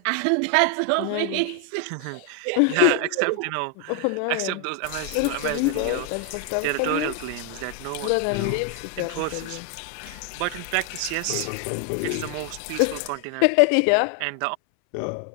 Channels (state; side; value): different; both; correlation 0.00